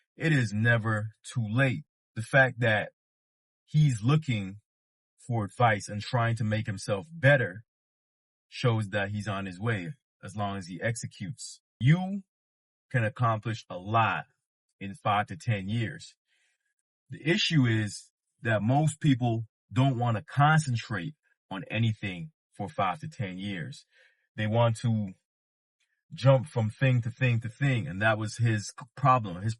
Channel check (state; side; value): identical; both; correlation 1.00